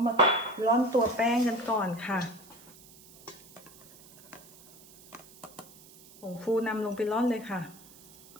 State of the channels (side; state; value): right; noise; hiss, 22 dB below the sound